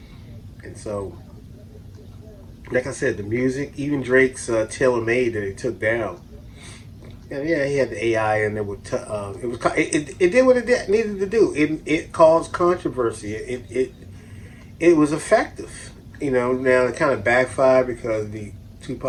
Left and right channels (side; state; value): both; identical; correlation 1.00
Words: And so, like I said, the music, even Drake's Tailor Made that he took down. And yeah, he had the AI, and it did what it needed to do. It caused controversy. It was effective. Now it kind of backfired because the